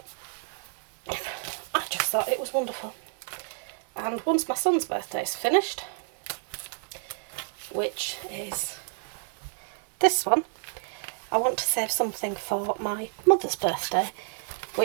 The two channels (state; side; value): silent; left; 58 dB below the other